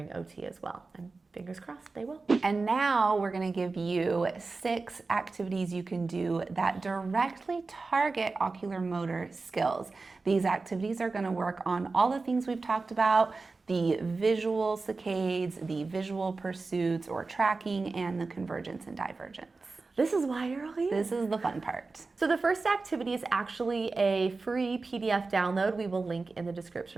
OT as well? And fingers crossed, they will. And now we're going to give you 6 activities you can do that directly target ocular motor skills. These activities are going to work on all the things we've talked about: the visual saccades, the visual pursuits or tracking, and the convergence and divergence. This is why you're all here. This is the fun part. So the first activity is actually a free PDF download. We will link in the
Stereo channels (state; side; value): quieter; left; 3.9 dB